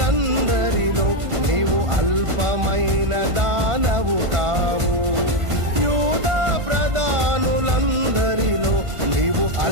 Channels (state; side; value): late; left; 1.5 ms